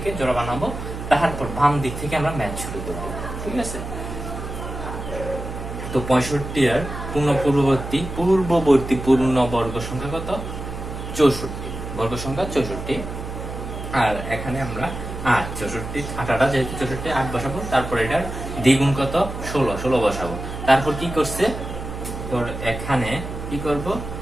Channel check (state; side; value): noise; right; hum, 8 dB below the sound